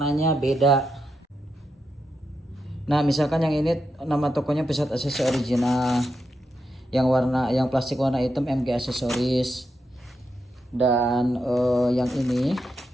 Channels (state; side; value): normal; both; correlation 0.85